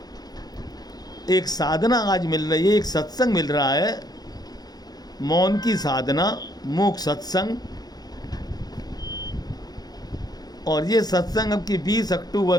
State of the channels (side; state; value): right; late; 0.19 ms